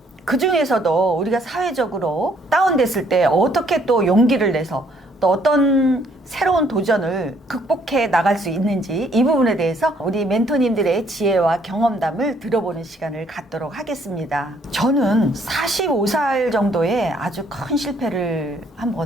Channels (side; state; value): both; normal; correlation 0.66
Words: 그 중에서도 우리가 사회적으로 다운됐을 때 어떻게 또 용기를 내서 또 어떤 새로운 도전을 극복해 나갈 수 있는지 이 부분에 대해서 우리 멘토님들의 지혜와 경험담을 들어보는 시간을 갖도록 하겠습니다. 저는 45살 정도에 아주 큰 실패를